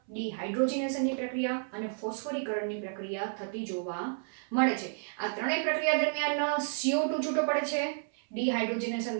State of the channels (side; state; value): left; silent; 57 dB below the other